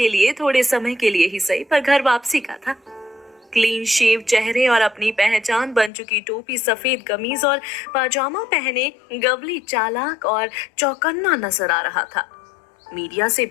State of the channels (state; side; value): drops out; right; at 5.9 s